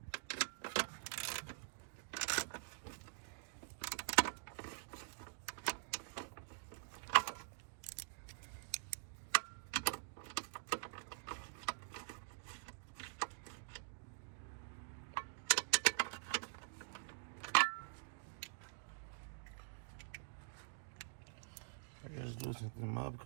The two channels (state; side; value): silent; left; digital silence